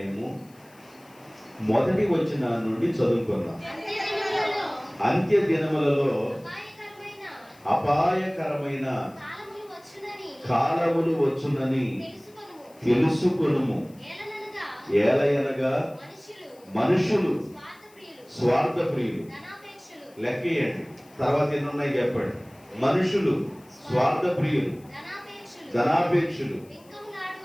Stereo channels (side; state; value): left; noise; hiss, 29 dB below the sound